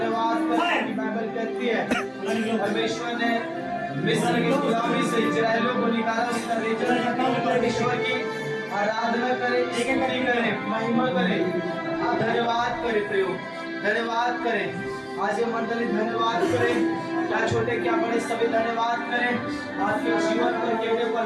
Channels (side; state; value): both; identical; correlation 1.00